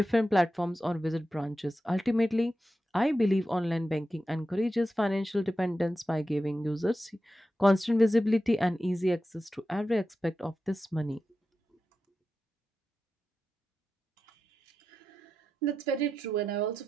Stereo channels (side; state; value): both; normal; correlation 0.91